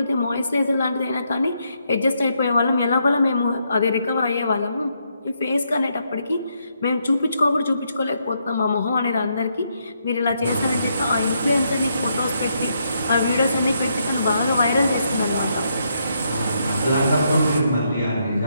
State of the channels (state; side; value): inverted; both; correlation -0.78